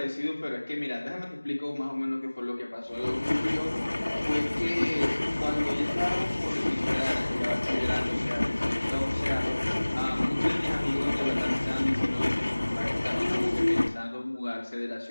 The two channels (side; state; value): both; inverted; correlation -1.00